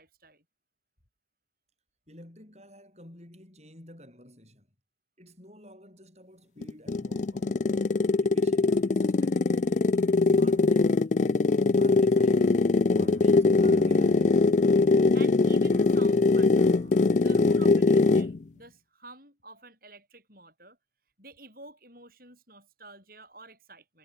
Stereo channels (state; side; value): quieter; right; 3.1 dB